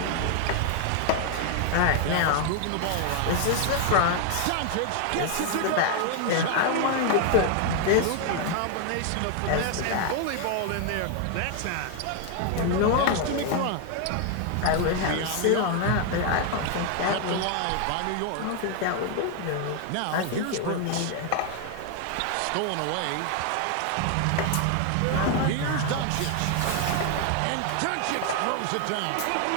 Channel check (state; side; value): different; both; correlation 0.00